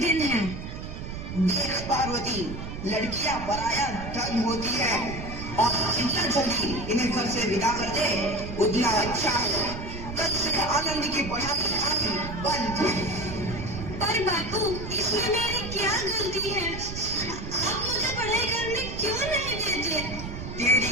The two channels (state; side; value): noise; right; rumble, 8 dB below the sound